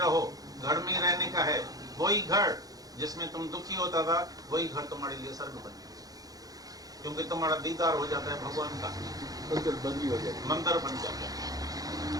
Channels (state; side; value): late; left; 0.18 ms